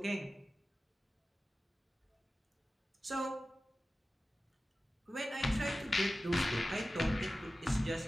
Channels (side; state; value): both; normal; correlation 0.95